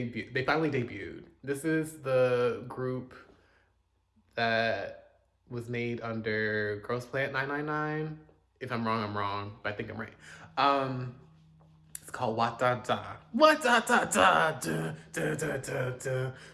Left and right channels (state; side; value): identical; both; correlation 1.00